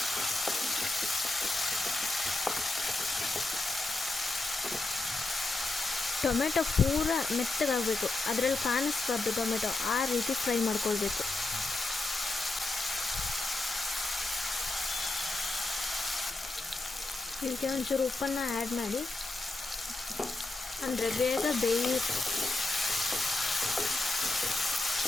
ಟೊಮೆಟೊ ಪೂರ ಮೆತ್ತಗಾಗಬೇಕು. ಅದರಲ್ಲಿ ಕಾಣಿಸ್ಬಾರ್ದು ಟೊಮೆಟೊ, ಆ ರೀತಿ ಫ್ರೈ ಮಾಡ್ಕೊಳ್ಬೇಕು. ಇದಕ್ಕೆ ಒಂಚೂರು ಉಪ್ಪನ್ನು ಆ್ಯಡ್ ಮಾಡಿ, ಅಂದರೆ ಬೇಗ ಬೇಯುತ್ತೆ.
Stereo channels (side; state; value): right; quieter; 3.1 dB